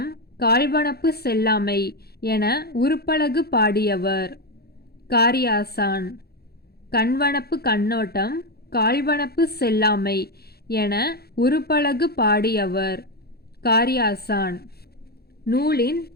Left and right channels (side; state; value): right; late; 0.46 ms